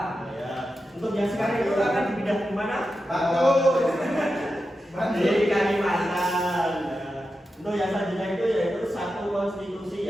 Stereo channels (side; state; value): both; normal; correlation 0.90